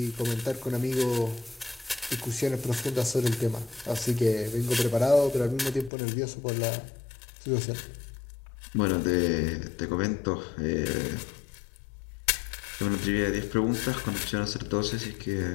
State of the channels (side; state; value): right; drops out; at 5.9 s